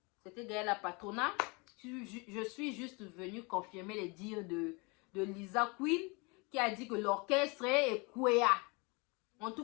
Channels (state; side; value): quieter; right; 29.0 dB